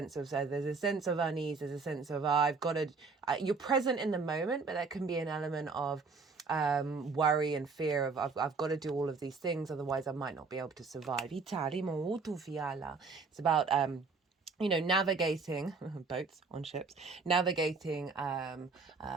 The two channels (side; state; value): left; quieter; 4.6 dB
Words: of unease, there's a sense of I've got to. You're present in the moment, but there can be an element of worry and fear of I've got to do all of these things, otherwise I might not be able to survive. It's about navigating boats on ships, navigating